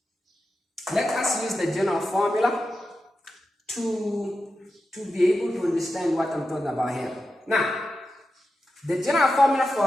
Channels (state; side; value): normal; both; correlation 0.90